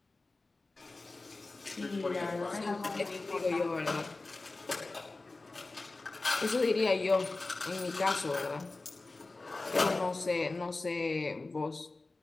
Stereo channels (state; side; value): quieter; right; 3.3 dB